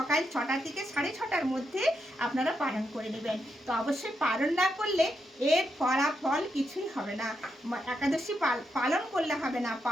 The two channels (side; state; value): both; normal; correlation 0.82